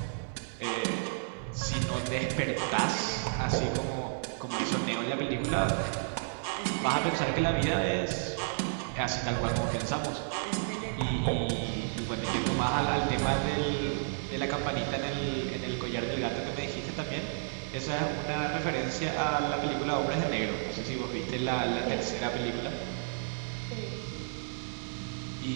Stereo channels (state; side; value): silent; left; 56 dB below the other